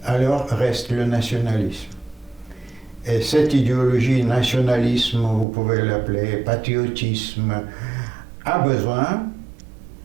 alors reste le nationalisme. Et cette idéologie, nationalisme, vous pouvez l'appeler patriotisme, a besoin,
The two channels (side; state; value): left; drops out; at 5.5 s